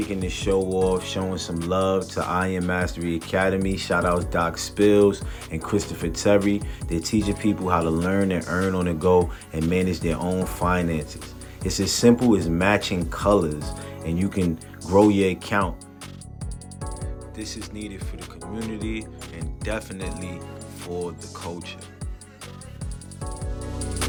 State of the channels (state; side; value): identical; both; correlation 1.00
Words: this show off, showing some love to Iron Mastery Academy. Shout out Doc Spills and Christopher Terry. They're teaching people how to learn and earn on the go and manage their own finances. It's as simple as matching colors, and you can grow your account. This is needed for the community and definitely for the culture.